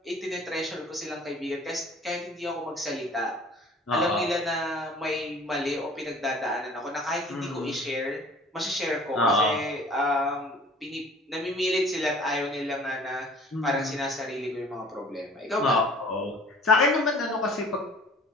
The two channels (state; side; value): normal; both; correlation 0.49